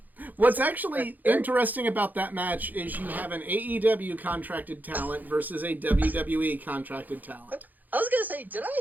What's actually interesting about that match is you have an AEW contracted talent versus a WWE contracted talent. I was going to say, did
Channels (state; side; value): late; left; 0.083 ms